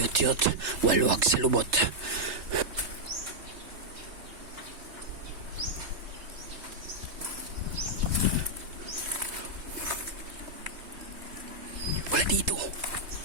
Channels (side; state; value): left; late; 3.1 ms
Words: waluwag sa lubot. Wala dito.